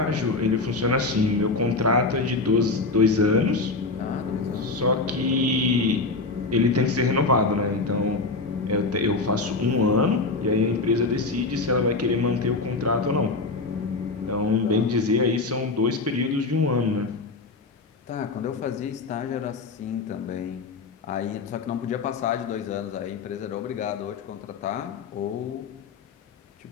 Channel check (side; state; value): right; quieter; 3.7 dB